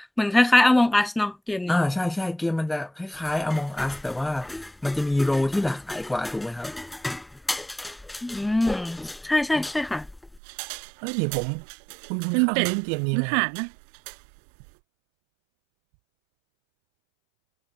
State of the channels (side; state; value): left; drops out; at 10.4 s